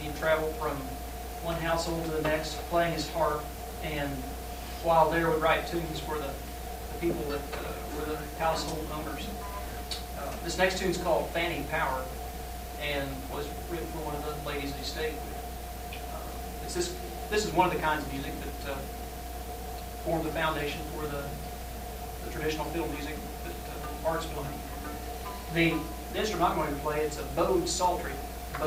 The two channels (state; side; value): identical; both; correlation 1.00